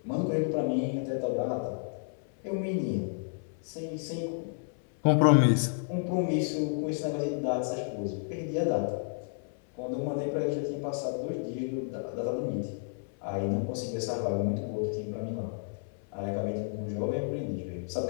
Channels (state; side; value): silent; right; 57 dB below the other